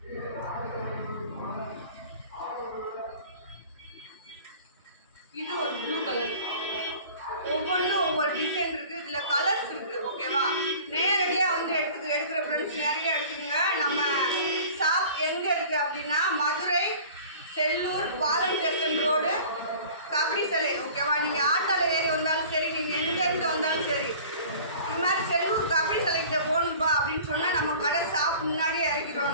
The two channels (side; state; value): both; inverted; correlation -0.45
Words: இது ஒரு ப்ளூ கலர். ஒவ்வொன்றும் ஒவ்வொரு டிசைன் இருக்குது. இதில் கலர்ஸ் இருக்குது. ஓகேவா? நேரடியாக வந்து எடுக்கிற ஃப்ரெண்ட்ஸ் நேரடியாக எடுத்துக்கோங்க. நம்ம ஷாப் எங்கே இருக்குது அப்படின்னா மதுரை செல்லூர் பாலம் ஸ்டேஷன் ரோடு கபடி சிலை. ஓகேவா? நீங்கள் ஆட்டோவில் ஏறி வந்தாலும் சரி, நீங்கள் எங்கேருந்து வந்தாலும் சரி, இது மாதிரி செல்லூர் கபடி சிலைக்கிட்ட போகணும்பா அப்படின்னு சொன்னால் நம்ம கடை ஷாப் முன்னாடியே